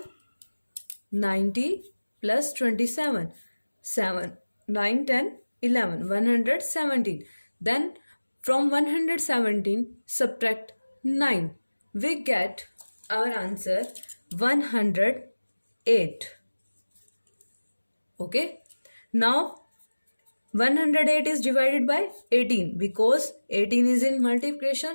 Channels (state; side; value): inverted; both; correlation -1.00